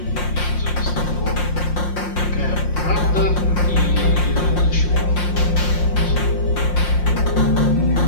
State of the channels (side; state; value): right; late; 5.7 ms